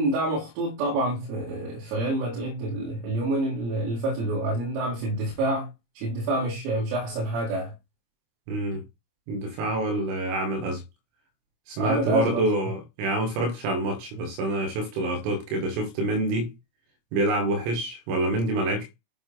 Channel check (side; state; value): left; late; 26 ms